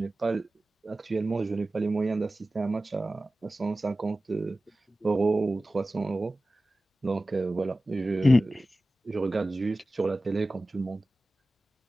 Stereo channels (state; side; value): normal; both; correlation 0.95